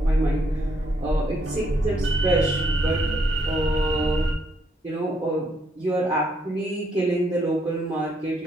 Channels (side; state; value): both; normal; correlation 0.73